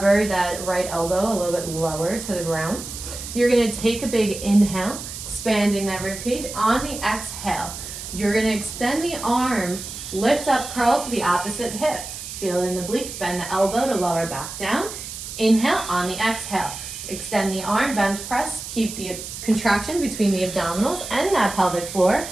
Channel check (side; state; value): right; noise; hiss, 9 dB below the sound